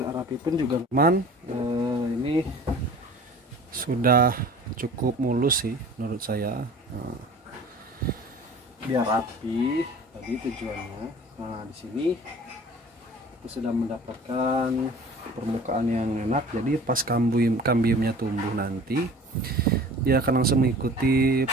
rapi pun juga teman, ini sudah cukup mulus sih menurut saya. Biar rapi tadi tujuannya. Nah, di sini kita sudah mendapatkan permukaan yang enak, jadi pas kambiumnya tumbuh nanti dia akan langsung mengikuti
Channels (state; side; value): normal; both; correlation 0.44